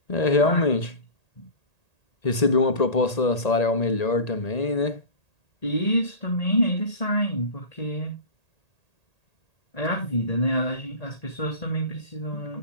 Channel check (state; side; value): late; right; 1.8 ms